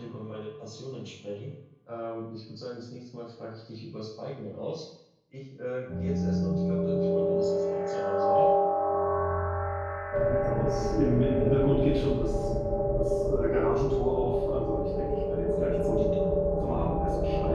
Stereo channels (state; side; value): identical; both; correlation 1.00